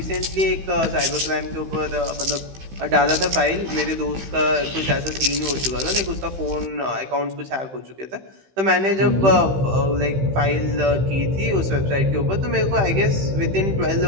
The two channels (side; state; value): left; late; 15 ms